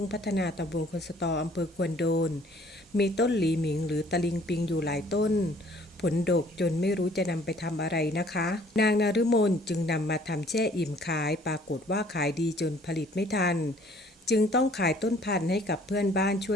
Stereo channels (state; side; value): normal; both; correlation 0.57